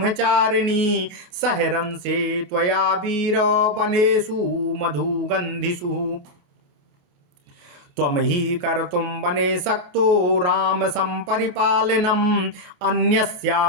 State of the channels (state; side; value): late; left; 28 ms